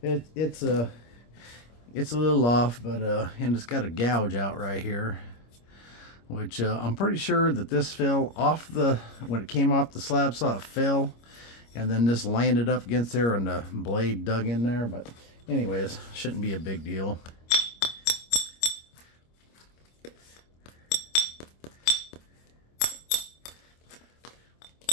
it's a little off, but and it's got a gouge out right here, which I'm pretty sure that this fell off when it came off the slab, saw it fell, and then this landed up against there and the blade dug in there. But anyways, shouldn't be a big deal.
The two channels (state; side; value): late; right; 25 ms